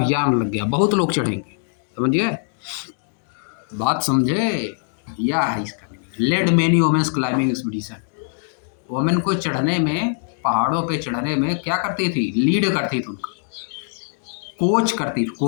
लग गया, बहुत लोग चढ़ेंगे, समझिए बात, समझे, यह है इसका meaning. Led many women's climbing expedition, women को चढ़ने में, पहाड़ों पे चढ़ने में क्या करती थी, लीड करती थी, उनका कोच करती थी,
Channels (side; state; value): right; silent; digital silence